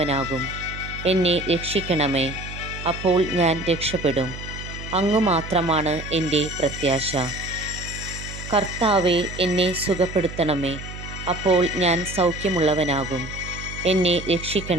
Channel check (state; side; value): noise; right; hum, 11 dB below the sound